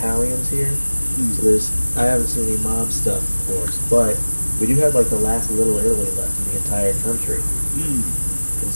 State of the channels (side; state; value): both; inverted; correlation -1.00